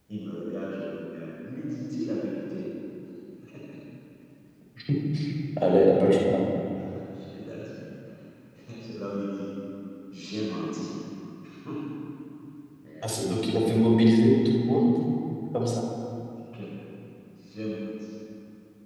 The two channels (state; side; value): identical; both; correlation 1.00